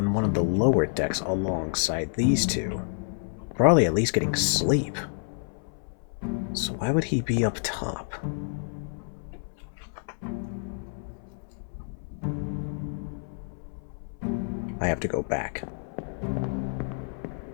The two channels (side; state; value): right; silent; 59 dB below the other